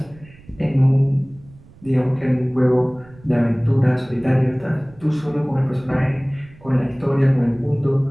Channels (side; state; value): right; noise; rumble, 24 dB below the sound